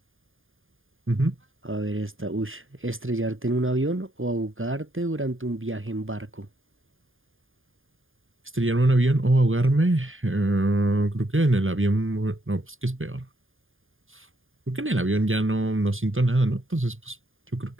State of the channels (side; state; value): left; late; 0.59 ms